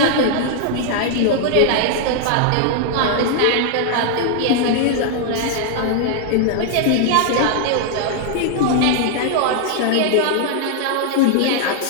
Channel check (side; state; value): both; different; correlation 0.00